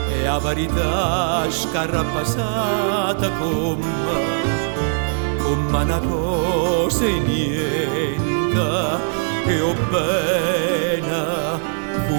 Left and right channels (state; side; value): silent; left; digital silence